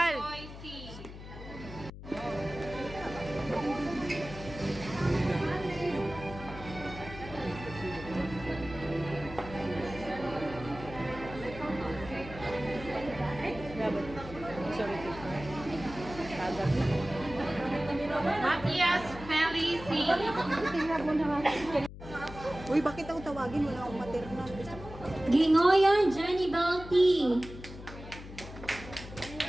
C. Matias Felici. Uy, bakit ako tawag? tawagin mo na akong maternal. Gingoyan Jenny Bell T.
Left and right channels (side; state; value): left; noise; hum, 13 dB below the sound